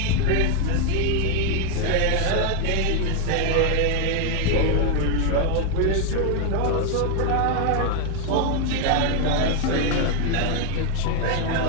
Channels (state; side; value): different; both; correlation 0.00